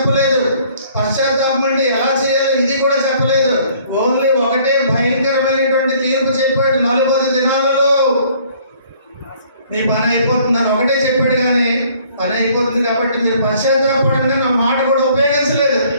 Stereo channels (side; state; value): both; inverted; correlation -0.59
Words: పశ్చాత్తాపం అంటే ఎలా చేయాలో ఇది కూడా చెప్పలేదు. ఓన్లీ ఒకటే భయంకరమైనటువంటి తీర్పు చెప్పాడు. 40 దినాలలో మీ పని అయిపోతుందని ఒకటే చెప్పాడు. కానీ పని అయిపోతుంది కాబట్టి మీరు పశ్చాత్తాపడంగా నా మాట కూడా ఉపయోగించలేదు.